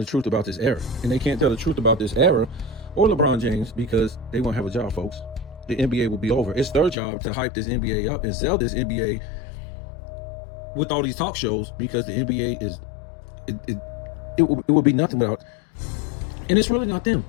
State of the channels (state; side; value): drops out; right; at 7.0 s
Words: the truth about this era. And they can't tell the truth about this era or LeBron James because they won't have a job, folks. The NBA will be over. It's their job to hype this NBA up and sell this NBA with all these talk shows, because the NBA is it would be nothing without. And it's really not them.